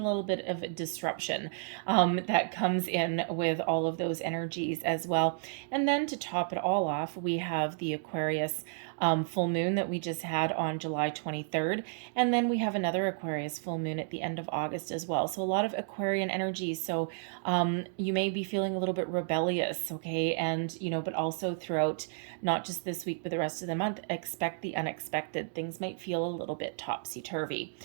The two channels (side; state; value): left; silent; digital silence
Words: little bit of a disruption that comes in with all of those energies as well. And then to top it all off, we have the Aquarius full moon that we just had on July 23rd. And then we have another Aquarius full moon at the end of August as well. So a lot of Aquarian energy. So you may be feeling a little bit rebellious, okay? And, but also throughout not just this week, but the rest of the month, expect the unexpected. Things might feel a little bit topsy-turvy.